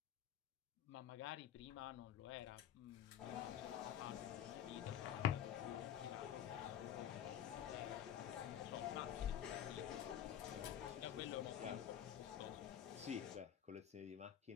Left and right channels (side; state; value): right; quieter; 10.1 dB